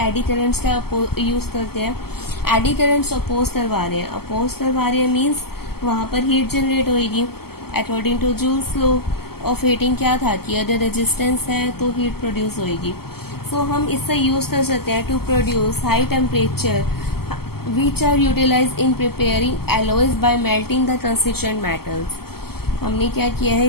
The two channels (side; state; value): right; late; 0.95 ms